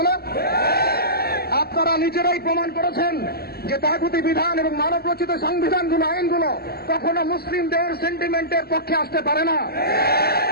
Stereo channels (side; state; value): right; late; 0.46 ms